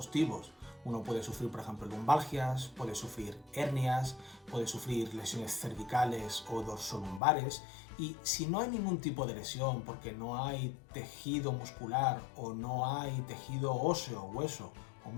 Uno puede sufrir, por ejemplo, lumbalgias, puede sufrir hernias, puede sufrir lesiones cervicales o dorsolumbares, y si no hay ningún tipo de lesión, porque no hay tejido muscular o no hay tejido óseo, hueso o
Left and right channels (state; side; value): drops out; right; at 7.2 s